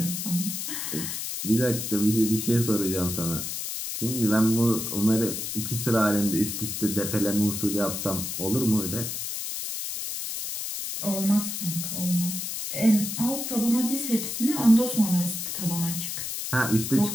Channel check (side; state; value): left; noise; hiss, 4 dB below the sound